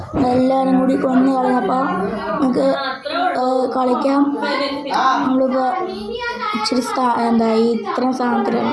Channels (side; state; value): both; identical; correlation 1.00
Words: എല്ലാവരും കൂടി കൊന്നു കളഞ്ഞപ്പോൾ നമുക്ക് കളിക്കാം. നമ്മളിപ്പോൾ ഇച്ചിരി ഇത്രയും സാധനത്തിലാണ്